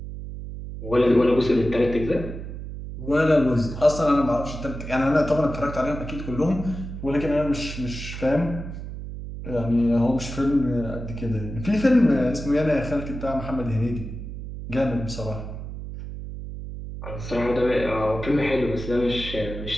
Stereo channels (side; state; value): right; noise; hum, 9 dB below the sound